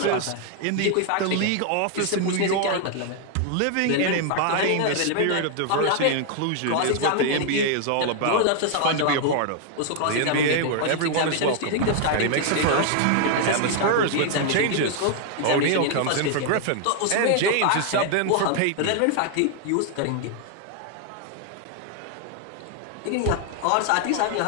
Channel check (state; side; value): different; both; correlation 0.00